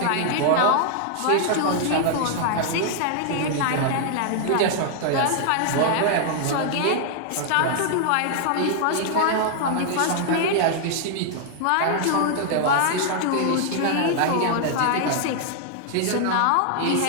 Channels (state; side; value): different; both; correlation 0.00